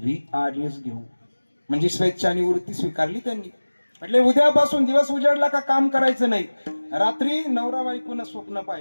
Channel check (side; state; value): both; inverted; correlation -1.00